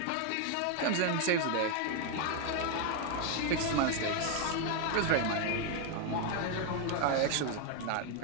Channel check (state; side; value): different; both; correlation 0.01